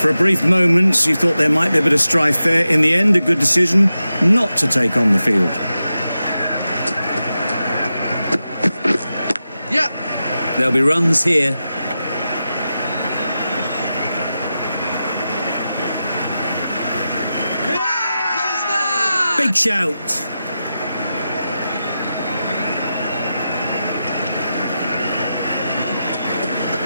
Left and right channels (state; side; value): inverted; both; correlation -0.91